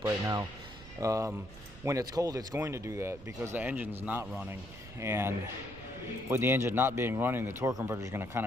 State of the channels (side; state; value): right; noise; rumble, 17 dB below the sound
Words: right now. When it's cold, it's going to do that because the engine's not running, and with the engine not being running, the torque converter is going to kind